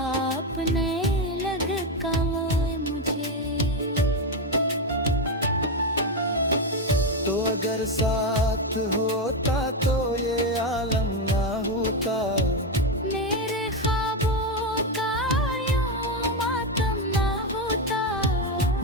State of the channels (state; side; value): normal; both; correlation 0.10